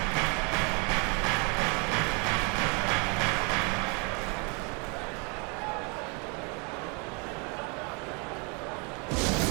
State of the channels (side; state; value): left; quieter; 33.2 dB